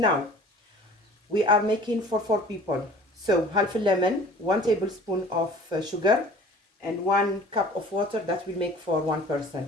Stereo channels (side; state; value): both; normal; correlation 0.47